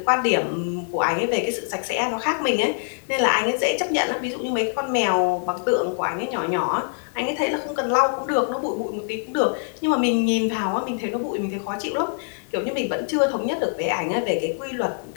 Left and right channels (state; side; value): silent; right; digital silence